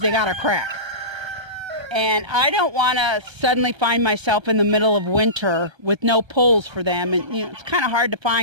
they got a crack. And I don't want to suddenly find myself in the middle of winter with no poles for them. And, you know, it's kind of hard to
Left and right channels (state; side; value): late; left; 1.3 ms